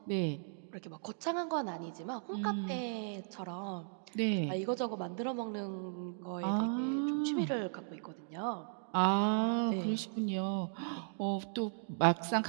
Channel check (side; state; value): left; silent; digital silence